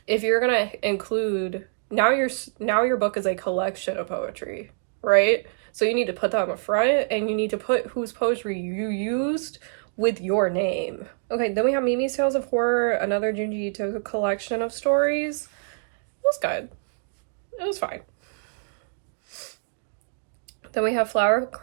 if you're gonna include... Now your book is a collection of poetry, right? So you need to put that on the front, and you need to put whose poetry you used with your name. Okay, then we have Mimi's Tales of Horror, another Junji Ito collection of stories. It was good. It was fine. Then we have Flower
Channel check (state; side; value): silent; left; digital silence